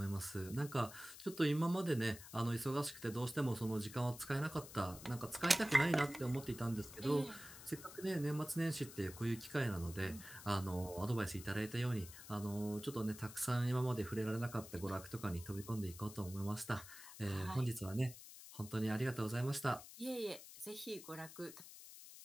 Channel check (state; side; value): noise; left; hiss, 15 dB below the sound